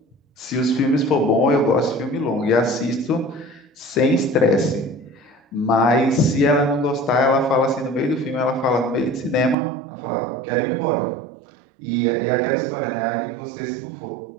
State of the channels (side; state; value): left; drops out; at 9.6 s